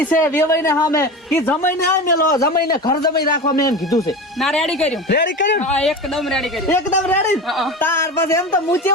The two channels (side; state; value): both; normal; correlation 0.28